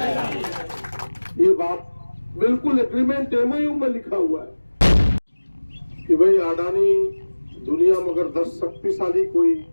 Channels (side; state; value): both; inverted; correlation -1.00